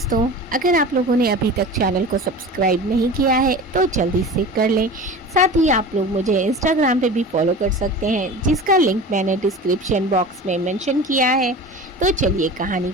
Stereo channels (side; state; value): both; normal; correlation 0.35